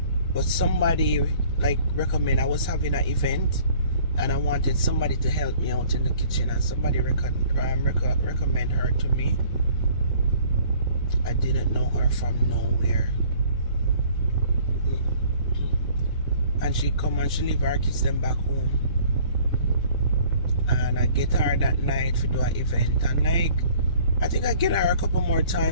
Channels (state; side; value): inverted; both; correlation -0.53